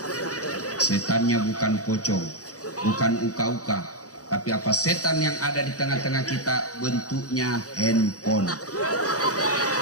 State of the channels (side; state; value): right; late; 0.67 ms